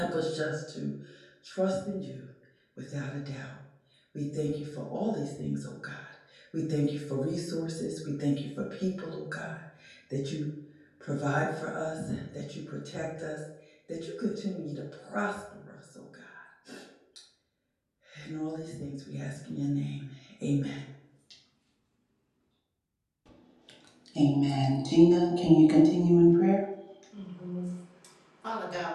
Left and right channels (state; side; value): identical; both; correlation 1.00